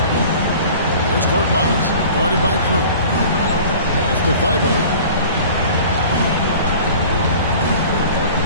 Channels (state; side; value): inverted; both; correlation -0.44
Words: Here's Korkmaz, guarded by Crew. Pass to Thibault.